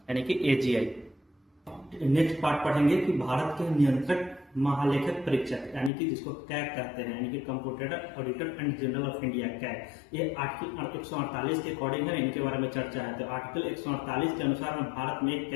कि एजीआई। नेक्स्ट पार्ट पढ़ेंगे कि भारत के नियंत्रक महालेखक परीक्षक यानी कि जिसको कैग कहते हैं यानी कि computer auditor and general of India CAG. ये आर्टिकल 148 के अकॉर्डिंग है, इनके बारे में चर्चा है। तो आर्टिकल 148 के अनुसार भारत में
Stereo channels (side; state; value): right; drops out; at 5.9 s